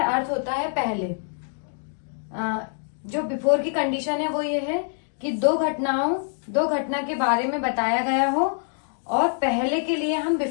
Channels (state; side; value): silent; right; 60 dB below the other